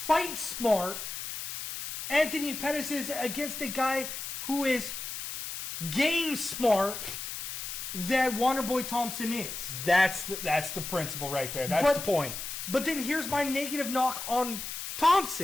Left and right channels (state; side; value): noise; left; hiss, 7 dB below the sound